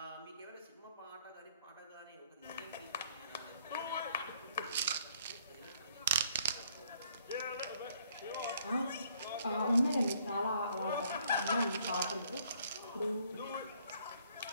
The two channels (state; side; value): inverted; both; correlation -0.65